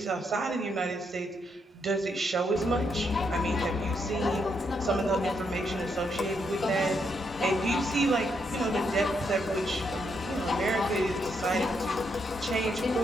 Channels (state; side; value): normal; both; correlation 0.78